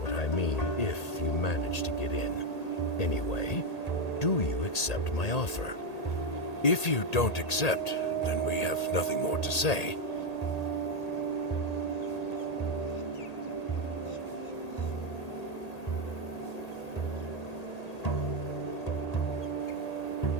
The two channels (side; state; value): right; late; 1.8 ms